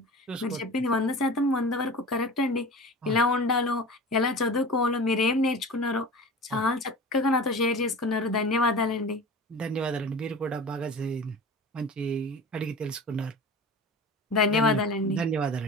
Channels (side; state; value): both; normal; correlation 0.35